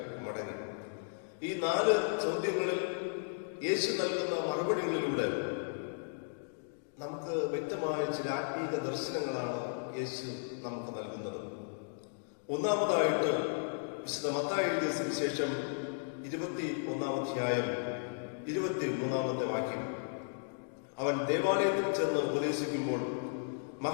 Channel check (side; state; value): right; silent; digital silence